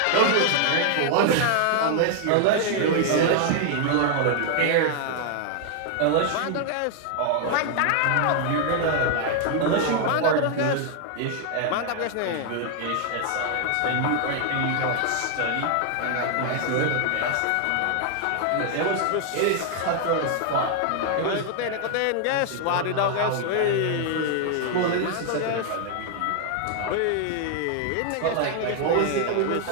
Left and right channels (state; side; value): different; both; correlation 0.00